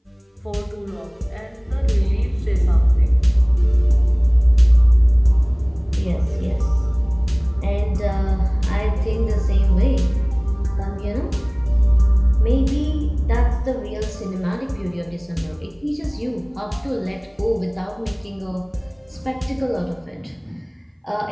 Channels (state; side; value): identical; both; correlation 1.00